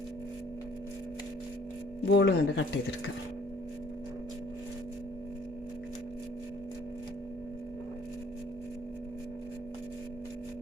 ബോളും കൊണ്ട് കട്ട് ചെയ്തെടുക്കുക.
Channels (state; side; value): normal; both; correlation 0.59